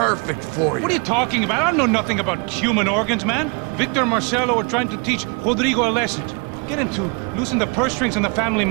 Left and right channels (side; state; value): left; quieter; 33.0 dB